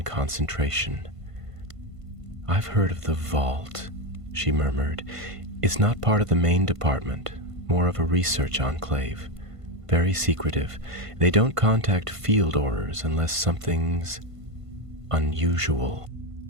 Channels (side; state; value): left; late; 1.5 ms